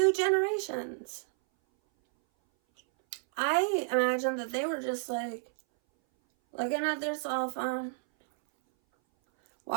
generations. I imagine that they were just like looking at their cell phone,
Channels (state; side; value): silent; left; 57 dB below the other